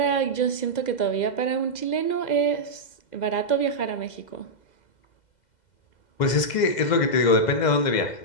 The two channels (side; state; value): right; late; 2.0 ms